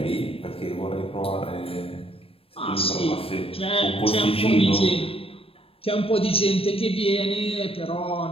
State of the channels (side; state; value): right; late; 0.28 ms